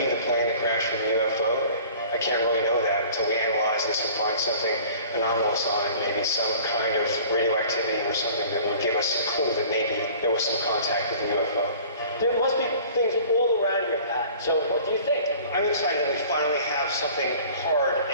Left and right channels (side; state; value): both; inverted; correlation -0.47